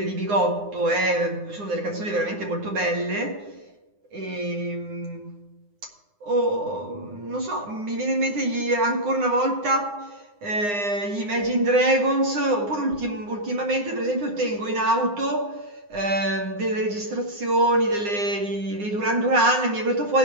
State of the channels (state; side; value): late; left; 9.8 ms